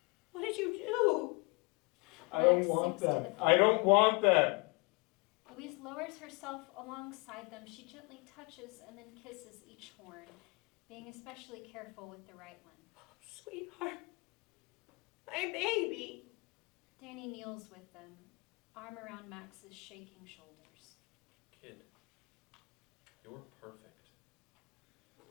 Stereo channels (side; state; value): right; quieter; 29.7 dB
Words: What did you do? I don't Max want sinks to them. the floor. I don't want them. Louise lowers herself alongside them. She gently touches and then kisses each horn, being especially careful with the right one. Sweetheart. My baby. Danny kneels with them, arm around Max's shaking shoulders. Kid, you're perfect.